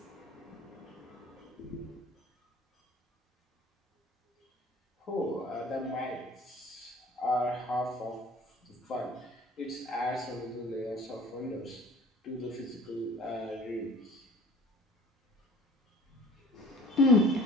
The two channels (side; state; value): both; normal; correlation 0.47